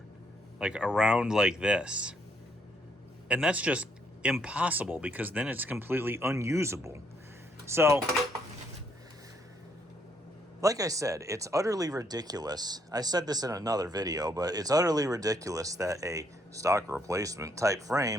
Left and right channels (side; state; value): both; normal; correlation 0.71